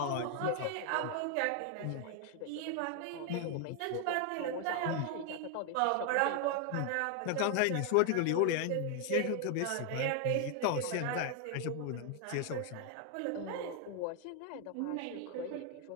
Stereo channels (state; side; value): different; both; correlation 0.00